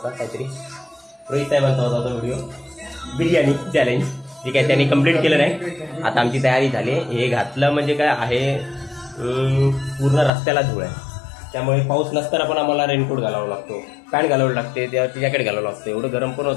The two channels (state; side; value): drops out; right; at 10.3 s